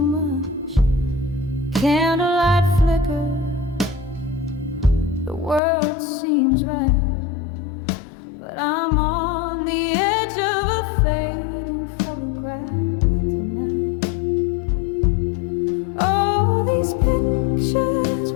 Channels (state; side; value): drops out; right; at 5.6 s